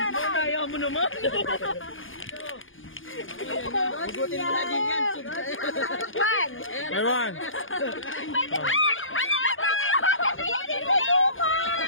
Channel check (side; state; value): right; late; 0.58 ms